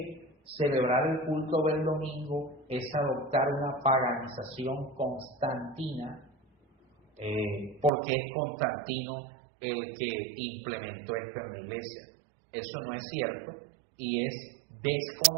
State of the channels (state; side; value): drops out; left; at 7.9 s